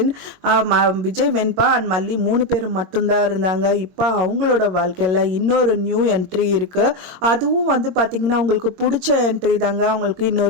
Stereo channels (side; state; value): left; late; 22 ms